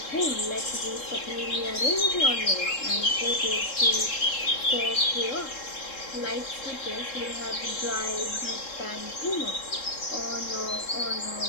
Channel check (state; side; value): late; right; 3.7 ms